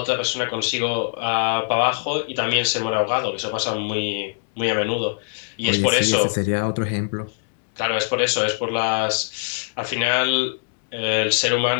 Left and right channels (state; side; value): silent; right; digital silence